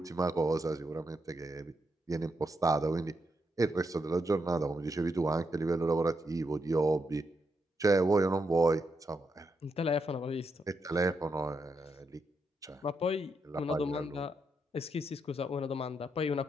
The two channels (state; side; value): normal; both; correlation 0.82